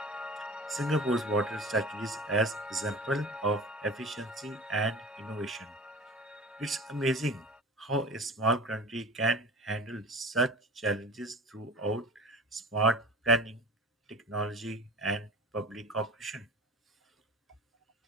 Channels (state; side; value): normal; both; correlation 0.38